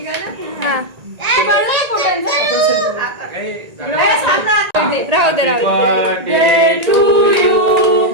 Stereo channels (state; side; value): late; left; 1.8 ms